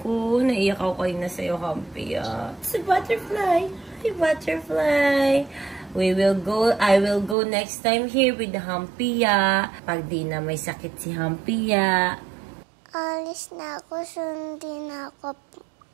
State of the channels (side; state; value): left; drops out; at 7.4 s